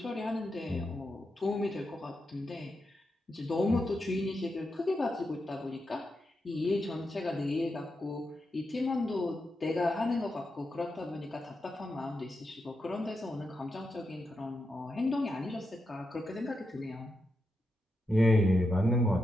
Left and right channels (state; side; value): normal; both; correlation 0.86